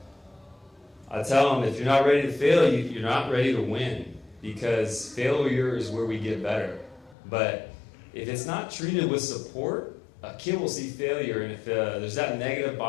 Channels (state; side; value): drops out; right; at 7.2 s